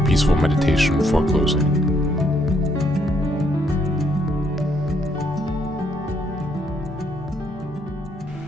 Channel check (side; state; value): both; normal; correlation 0.72